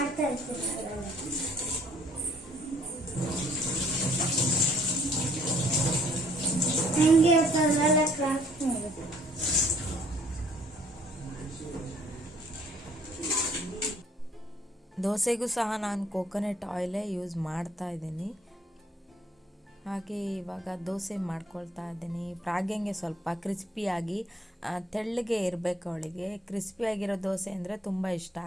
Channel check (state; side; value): normal; both; correlation 0.61